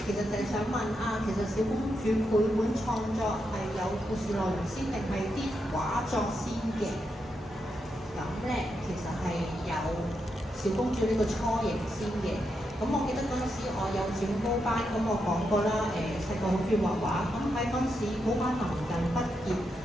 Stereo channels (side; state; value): both; normal; correlation 0.83